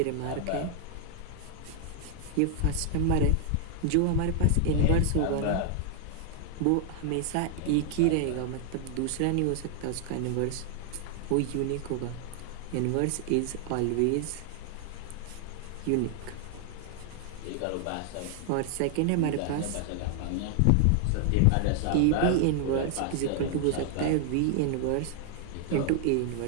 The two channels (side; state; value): both; different; correlation 0.00